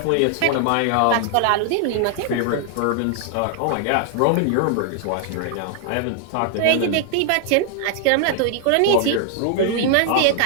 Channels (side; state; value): both; different; correlation 0.00